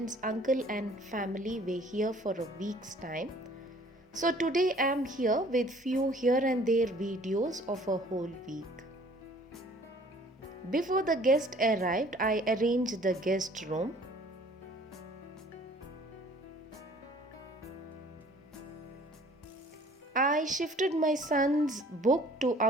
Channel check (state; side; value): normal; both; correlation 0.54